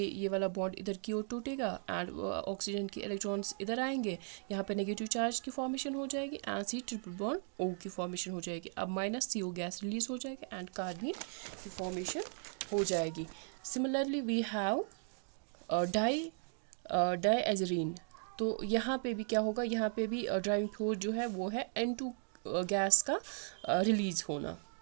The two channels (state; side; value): silent; left; 53 dB below the other